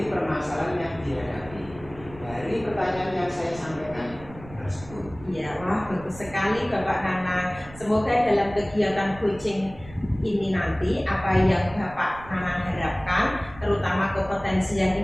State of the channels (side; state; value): right; noise; rumble, 18 dB below the sound